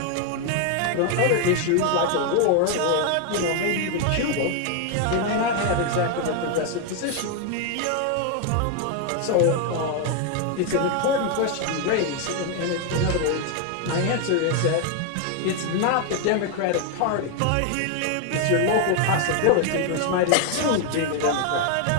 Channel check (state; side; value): different; both; correlation 0.01